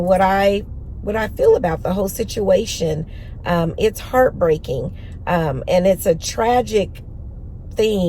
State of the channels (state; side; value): identical; both; correlation 1.00